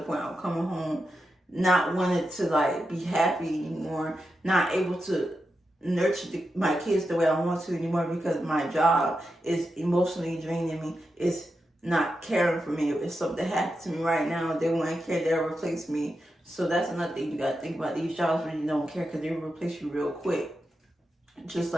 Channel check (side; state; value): both; normal; correlation 0.88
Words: point I'm coming home not wanting to, like, be happy anymore, not able to nurture my kids the way I want to anymore, because my job is emotionally draining me. It's not caring for me. If something happened to me right now, they won't care, they'll replace me. So that's another thing you got to think about. These jobs really don't care, because they'll replace you real quick. Just